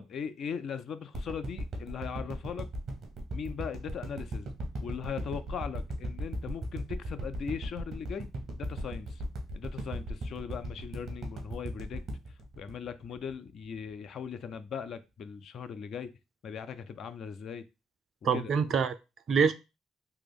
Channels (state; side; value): normal; both; correlation 0.70